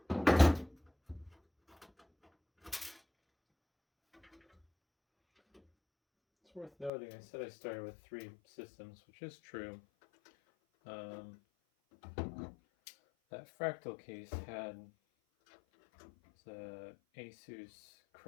It's worth noting, I said I started with 3 systems, which is true. That fractal case had the Asus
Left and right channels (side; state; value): right; drops out; at 6.9 s